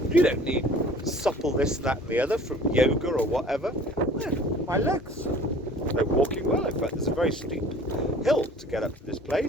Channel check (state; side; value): normal; both; correlation 0.48